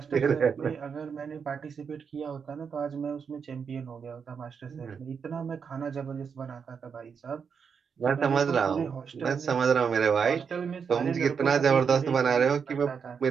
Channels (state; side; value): quieter; left; 6.4 dB